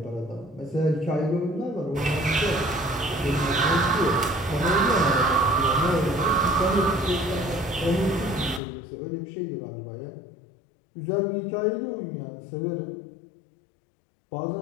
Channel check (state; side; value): drops out; right; at 8.6 s